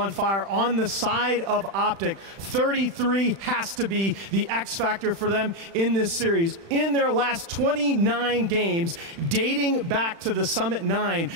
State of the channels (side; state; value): left; late; 36 ms